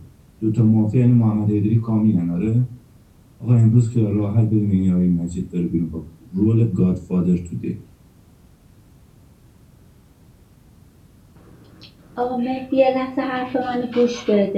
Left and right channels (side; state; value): both; identical; correlation 1.00